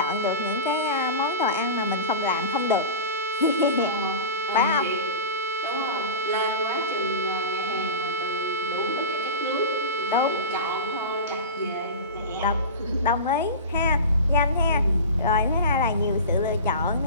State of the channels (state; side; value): inverted; both; correlation -0.30